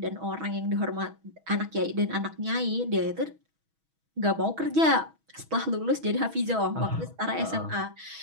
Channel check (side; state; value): left; late; 6.2 ms